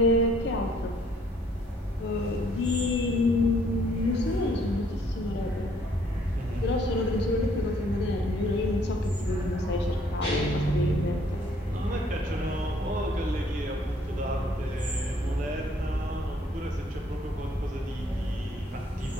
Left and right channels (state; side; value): normal; both; correlation 0.63